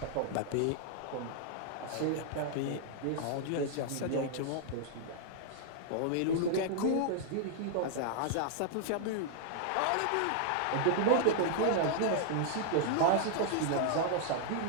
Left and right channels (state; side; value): different; both; correlation -0.01